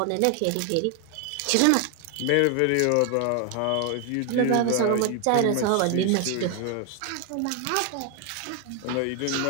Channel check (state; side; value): different; both; correlation 0.00